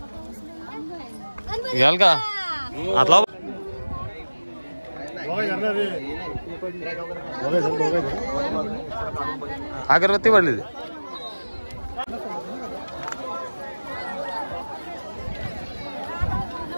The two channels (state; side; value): inverted; both; correlation -1.00